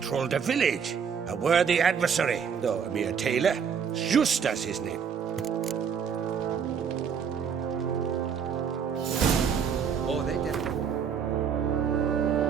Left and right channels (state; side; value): quieter; left; 7.0 dB